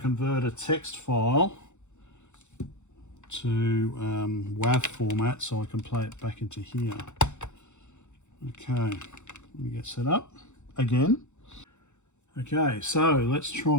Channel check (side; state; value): right; late; 0.83 ms